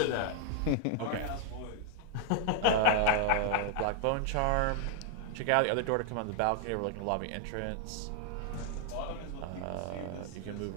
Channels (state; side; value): different; both; correlation 0.00